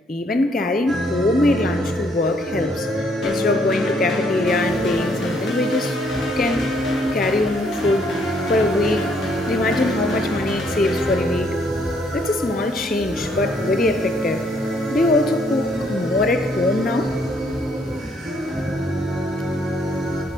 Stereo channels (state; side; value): normal; both; correlation 0.68